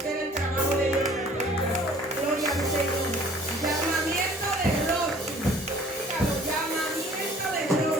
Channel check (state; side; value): normal; both; correlation 0.53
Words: el trabajo de Dios. Gloria al Señor. Llamamiento de Rosy. Dígalo, llamamiento de